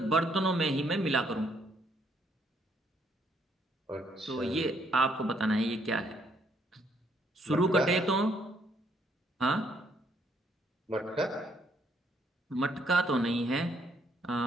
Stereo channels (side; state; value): both; normal; correlation 0.70